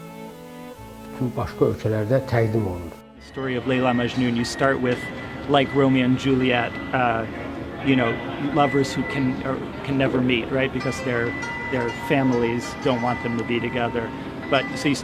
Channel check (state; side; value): identical; both; correlation 1.00